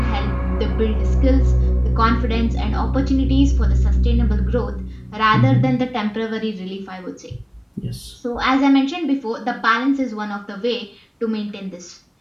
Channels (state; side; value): identical; both; correlation 1.00